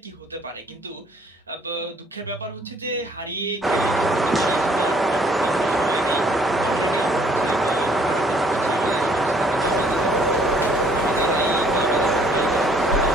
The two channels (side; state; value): both; normal; correlation 0.62